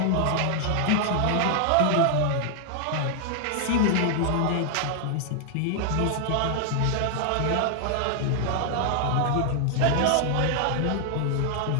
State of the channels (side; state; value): both; different; correlation 0.00